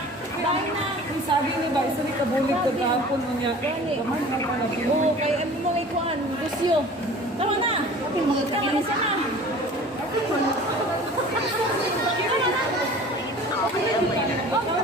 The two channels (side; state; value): both; normal; correlation 0.43